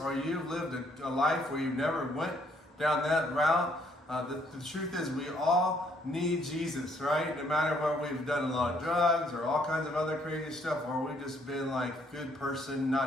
you've lived a life where you never went down that route. The truth is we all need Jesus, right? No matter whether we've done a lot of drugs or all kinds of other crazy stuff, or we've just been like a good person,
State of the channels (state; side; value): normal; both; correlation 0.67